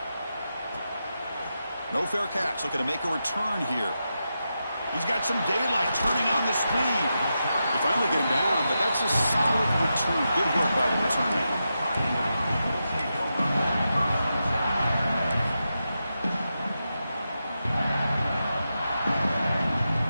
No fair catch. Looking to make a return here. He's got some daylight, turning on the speed. They finally get him down, but that's a solid return. Good work by the return man.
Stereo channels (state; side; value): inverted; both; correlation -0.88